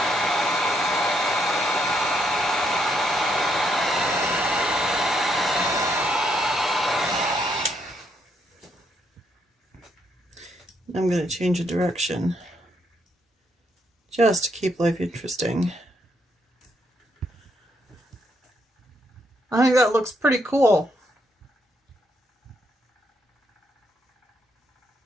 I'm going to change a direction just to keep life interesting. I think that looks pretty cool.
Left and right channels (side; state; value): both; normal; correlation 0.75